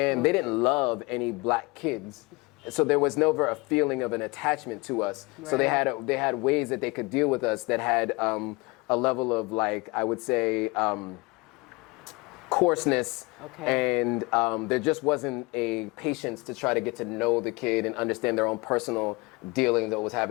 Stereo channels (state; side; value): quieter; right; 25.5 dB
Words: they didn't love any black kids. So there was never a feeling of an attachment to us. Right. So they had ways that they could deal with us that had a level of, like, I would say, coarseness, and there just wasn't a patience to try to get to know the kid and understand their own personal dealing that was